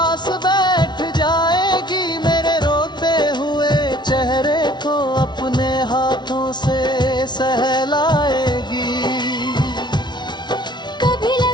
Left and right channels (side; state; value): right; late; 0.21 ms